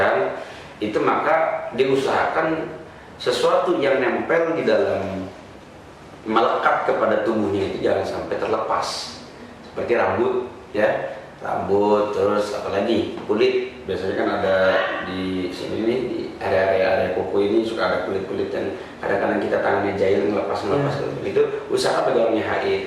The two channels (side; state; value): both; identical; correlation 1.00